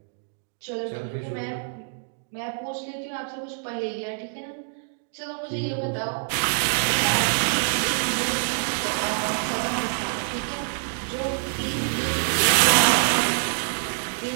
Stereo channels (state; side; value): silent; left; digital silence